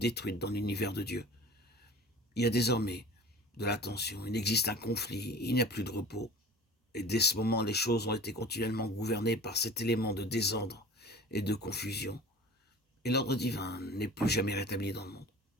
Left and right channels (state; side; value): normal; both; correlation 0.41